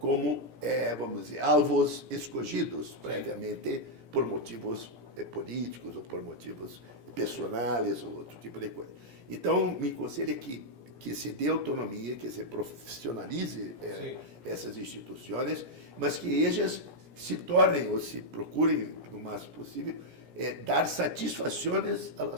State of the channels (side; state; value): left; late; 17 ms